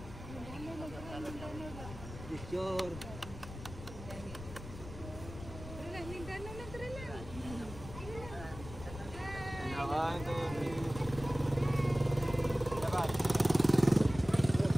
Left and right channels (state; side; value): noise; left; rumble, 12 dB below the sound